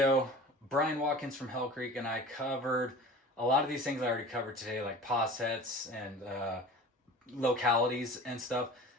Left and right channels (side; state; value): both; normal; correlation 0.39